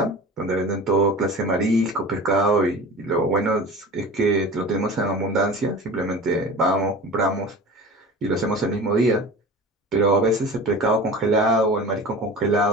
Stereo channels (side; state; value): both; normal; correlation 0.36